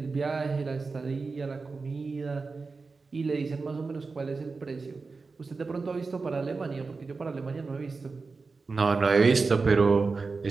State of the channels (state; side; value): quieter; left; 4.2 dB